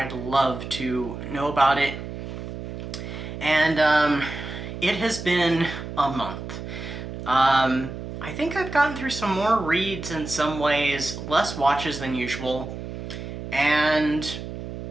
love to know about it. And it has been a month. I think I've gotten through some more reads in some ways, less watches than usual, and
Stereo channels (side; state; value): right; noise; hum, 9 dB below the sound